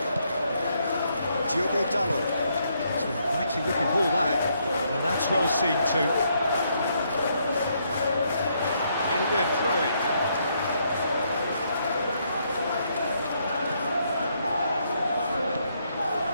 Diogo Dalot. It's an exciting looking ball, that. Well, that's well seen too. It'll be a throw-in.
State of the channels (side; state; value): both; inverted; correlation -0.74